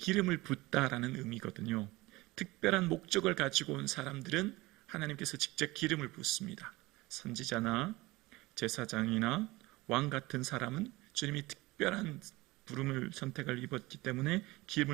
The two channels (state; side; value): quieter; left; 20.8 dB